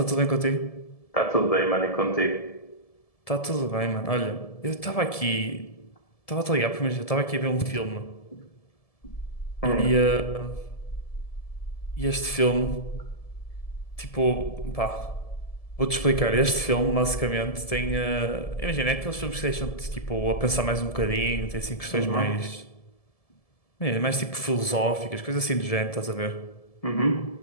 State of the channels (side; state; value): right; late; 1.7 ms